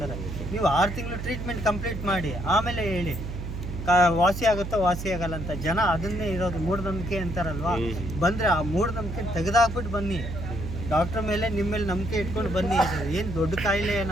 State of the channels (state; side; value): noise; right; hum, 7 dB below the sound